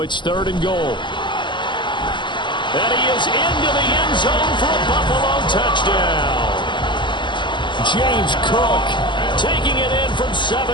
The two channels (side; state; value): right; late; 0.23 ms